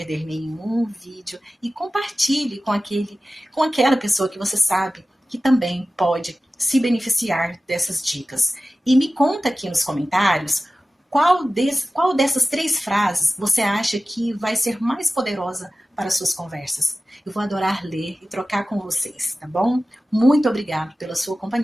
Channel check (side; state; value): both; normal; correlation 0.96